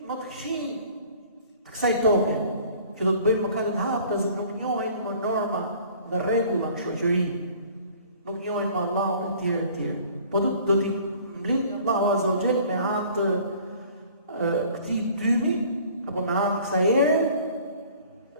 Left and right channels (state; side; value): inverted; both; correlation -0.51